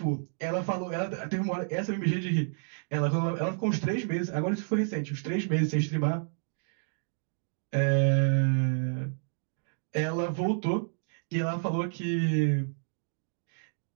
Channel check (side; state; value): left; silent; digital silence